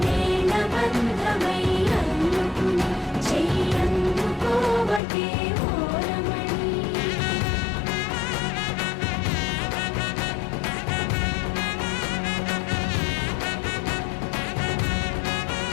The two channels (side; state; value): right; drops out; at 5.0 s